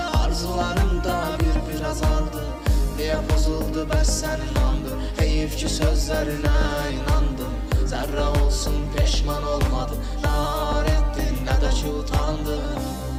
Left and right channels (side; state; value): both; identical; correlation 1.00